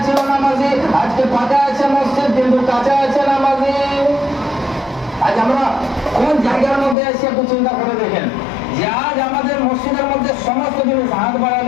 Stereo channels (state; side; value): drops out; right; at 7.0 s